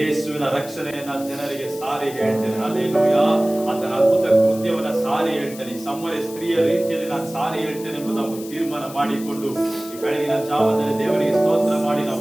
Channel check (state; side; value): noise; left; hiss, 16 dB below the sound